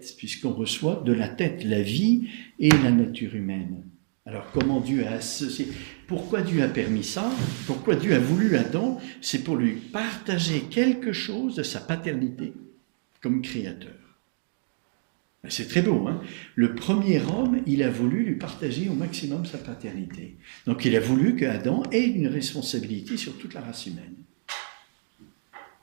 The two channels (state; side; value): silent; left; digital silence